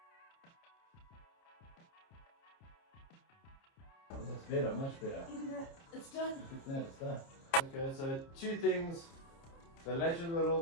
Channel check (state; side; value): late; right; 30 ms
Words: That's better, much better. it's done. Look at that, it's done. Okay, so two things. The latch is a little